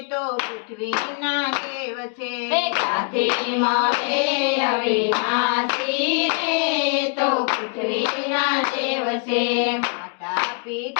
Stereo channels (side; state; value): right; quieter; 38.7 dB